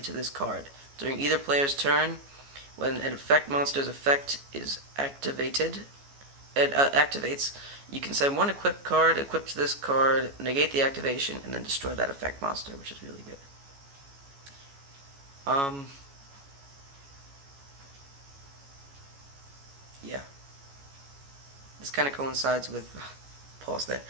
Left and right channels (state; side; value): late; left; 14 ms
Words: to this card. During either player's turn, when an effect monster's effect is activated, activates, you can send 1 equipped card equipped to this card, negate the activation, and then destroy that effect monster, which is really good. Yeah. This kind of coincides with, pause there.